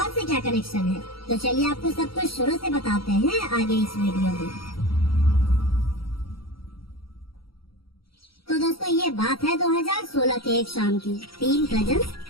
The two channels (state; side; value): late; right; 0.75 ms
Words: से क्या कनेक्शन है। तो चलिए आपको सब कुछ शुरू से बताते हैं आगे इस वीडियो में। तो दोस्तों, ये बात है 2016 के एक शाम की। 3 कजन्स